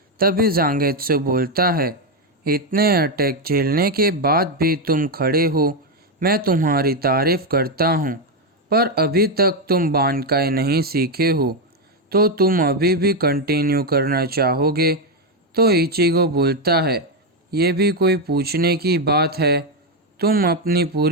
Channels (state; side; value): normal; both; correlation 0.06